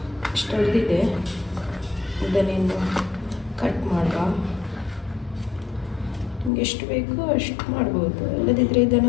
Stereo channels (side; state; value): right; drops out; at 6.5 s